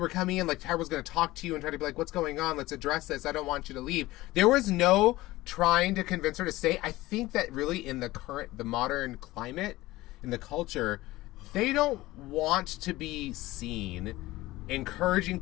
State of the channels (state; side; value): quieter; right; 18.3 dB